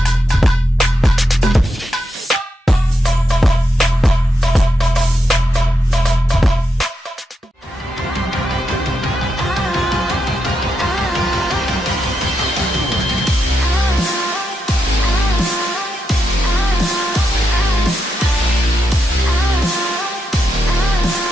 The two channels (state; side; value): normal; both; correlation 0.84